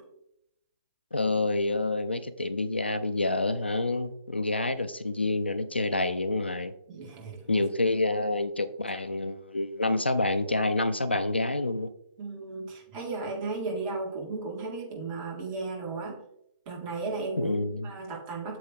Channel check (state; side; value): inverted; both; correlation -0.73